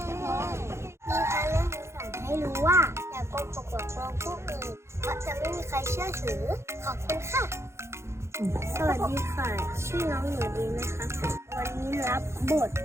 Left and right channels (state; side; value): late; left; 0.13 ms